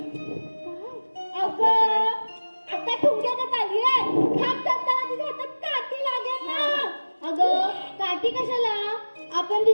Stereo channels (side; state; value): both; inverted; correlation -1.00